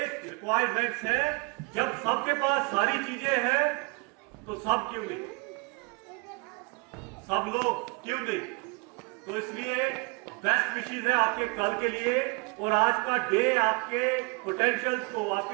रिक्वायरमेंट्स है। जब सबके पास सारी चीजें हैं तो सब क्यों नहीं, सब लोग क्यों नहीं। तो इसलिए बेस्ट विशेष है आपके कल के लिए। और आज का डे आपके पोटेंशियल्स को,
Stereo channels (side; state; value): left; quieter; 30.3 dB